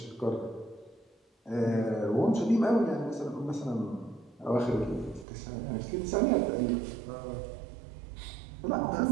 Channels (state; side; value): drops out; left; at 5.2 s